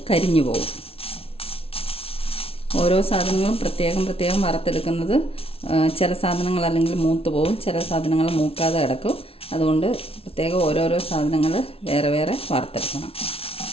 കരിഞ്ഞു പോകും. ഓരോ സാധനങ്ങളും പ്രത്യേകം വറുത്തെടുക്കുന്നത് ചില സാധനങ്ങൾ അല്ലെങ്കിൽ മൂത്ത് പോകും, ചില സാധനങ്ങൾ മൂക്കാതെ കിടക്കും. അതുകൊണ്ട് പ്രത്യേകം ഓരോരോ സാധനങ്ങൾ വേറെ വറുത്തെടുക്കണം.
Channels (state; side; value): late; right; 0.27 ms